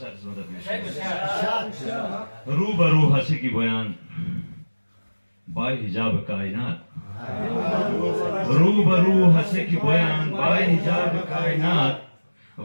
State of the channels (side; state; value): both; inverted; correlation -1.00